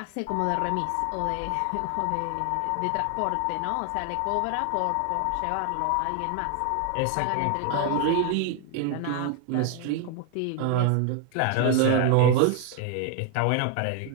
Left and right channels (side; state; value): both; different; correlation 0.01